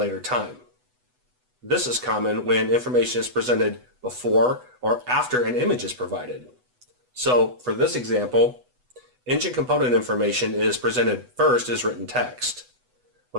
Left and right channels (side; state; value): left; late; 8.1 ms